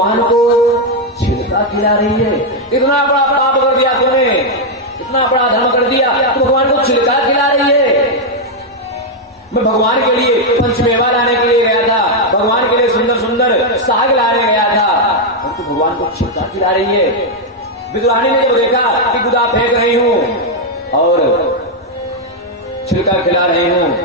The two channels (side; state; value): both; normal; correlation 0.00